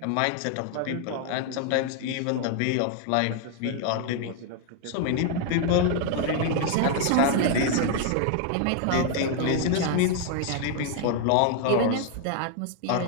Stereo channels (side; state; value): both; different; correlation 0.00